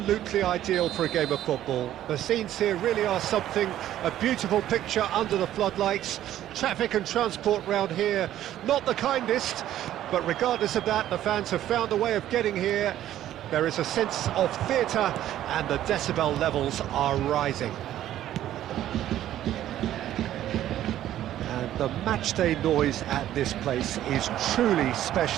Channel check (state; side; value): quieter; left; 12.4 dB